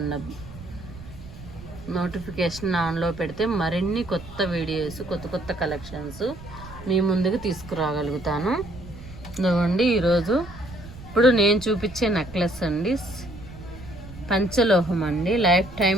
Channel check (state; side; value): noise; right; rumble, 15 dB below the sound